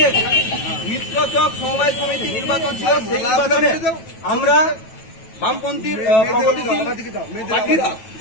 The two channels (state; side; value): late; right; 9.2 ms